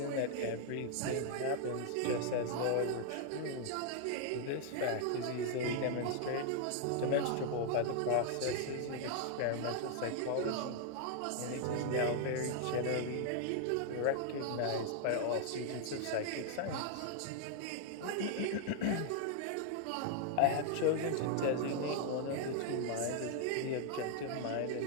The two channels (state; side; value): different; both; correlation 0.00